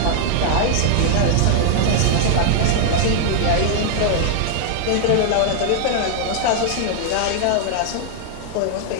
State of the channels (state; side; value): different; both; correlation -0.01